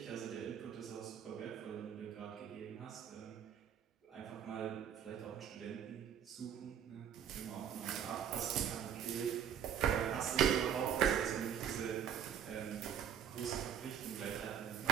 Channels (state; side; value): quieter; left; 8.9 dB